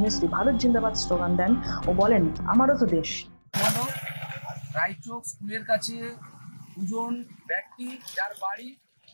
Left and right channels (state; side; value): inverted; both; correlation -1.00